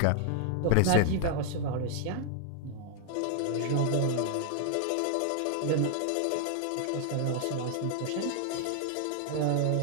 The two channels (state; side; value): different; both; correlation -0.01